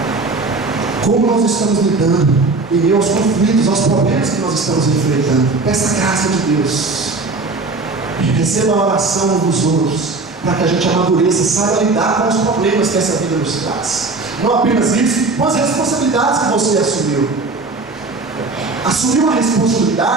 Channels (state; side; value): quieter; left; 3.7 dB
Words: Como nós estamos lidando em meio aos conflitos, aos problemas que nós estamos enfrentando. Peça a graça de Deus. Receba a oração uns dos outros, para que a gente amadureça, saiba lidar com os problemas que essa vida nos traz. Não apenas isso, mas as responsabilidades que você assumiu. Assumir uma